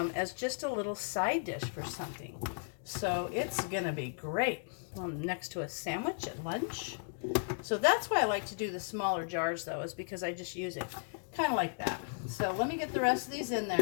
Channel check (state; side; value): silent; right; digital silence